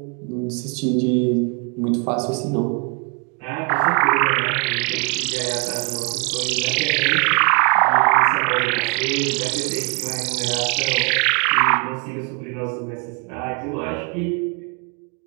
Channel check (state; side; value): quieter; left; 38.1 dB